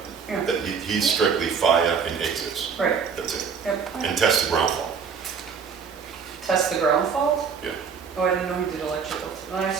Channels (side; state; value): left; quieter; 6.2 dB